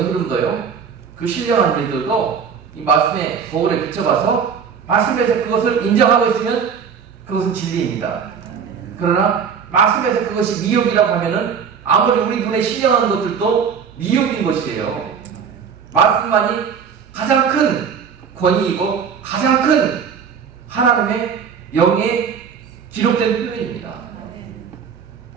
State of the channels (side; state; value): left; quieter; 6.8 dB